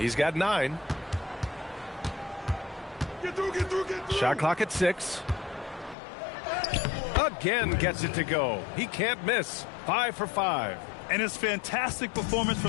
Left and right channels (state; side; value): drops out; right; at 6.0 s